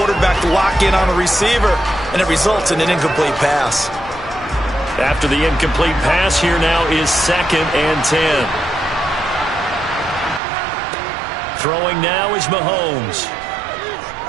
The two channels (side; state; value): left; drops out; at 10.4 s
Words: to lock in on a receiver, and it results in an incomplete pass. After the incomplete pass, here now is 2nd and 10. Throwing now is Mahomes.